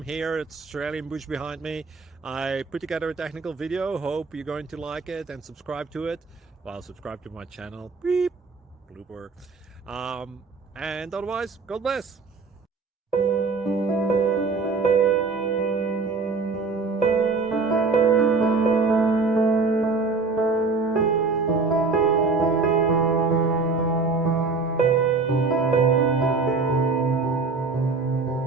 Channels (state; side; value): quieter; left; 4.1 dB